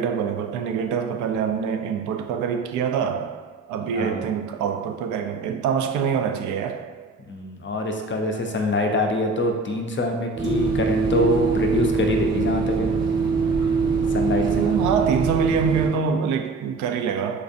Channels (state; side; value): quieter; left; 3.3 dB